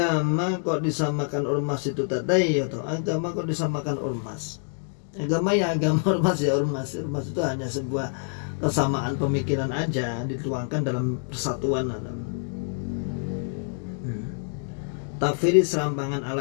kok disamakan ormas itu tadi ya toh. Agama kok disamakan ormas. Agama ya agama, ormas ya ormas. Ormas itu hanya sebuah kesamaan pemikiran aja dituangkan dalam persatuan. Takfiri serampangan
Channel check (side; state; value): right; silent; 61 dB below the other